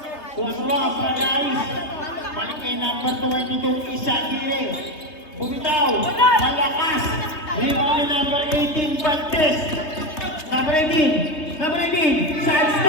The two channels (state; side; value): late; right; 3.2 ms